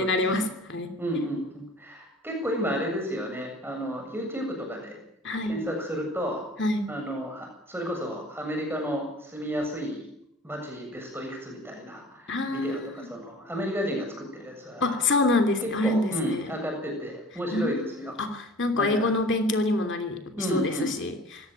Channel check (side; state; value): both; normal; correlation 0.44